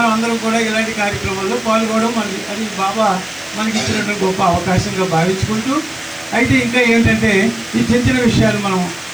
అందరం కూడా ఇలాంటి కార్యక్రమాల్లో పాల్గొనడం అది బాబా మనకి ఇచ్చినటువంటి గొప్ప అవకాశంగా భావించుకుంటూ, అయితే ఇంకా ఏంటంటే ఈ చిన్న విషయాలు మనం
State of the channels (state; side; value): noise; right; hiss, 24 dB below the sound